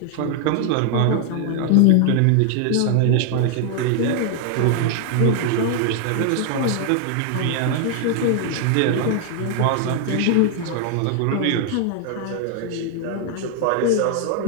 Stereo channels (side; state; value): both; different; correlation 0.00